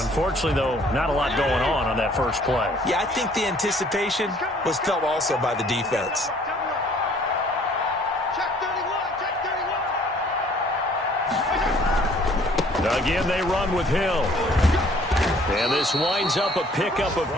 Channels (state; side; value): normal; both; correlation 0.58